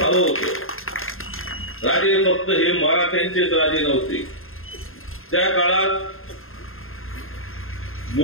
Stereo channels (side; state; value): right; late; 0.61 ms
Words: होतं. राजे फक्त हे मराठ्यांचेच राजे नव्हते. त्या काळात